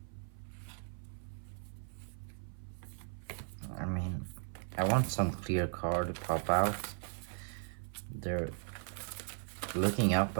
I mean, I want some clear card to pop out. They're looking up,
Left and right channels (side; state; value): left; silent; 53 dB below the other